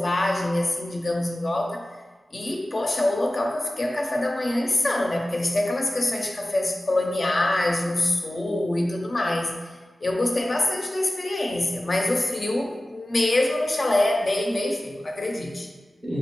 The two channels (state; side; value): normal; both; correlation 0.96